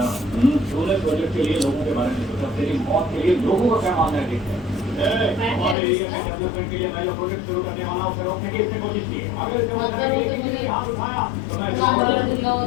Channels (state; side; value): drops out; right; at 5.8 s